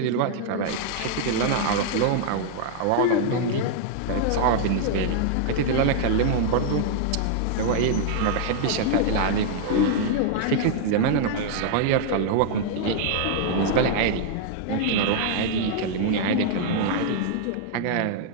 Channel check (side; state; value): both; different; correlation -0.01